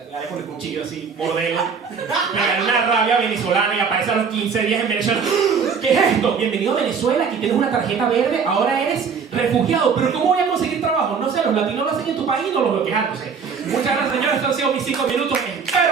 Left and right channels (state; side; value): quieter; left; 6.0 dB